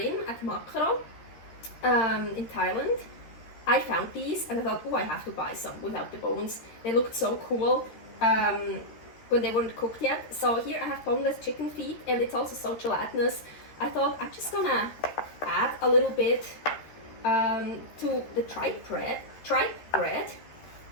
at Makro in Thailand, I found these and I thought, oh, I have to buy some without the bones. They looked so cool when they weren't cooked yet. So here I have boneless chicken feet, and it's also so gelatinous. I thought I'm just gonna add a little bit to the tripe bread.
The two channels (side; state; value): right; late; 13 ms